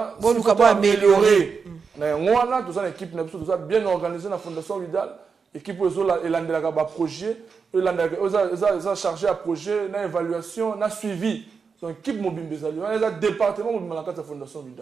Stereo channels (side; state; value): left; quieter; 5.5 dB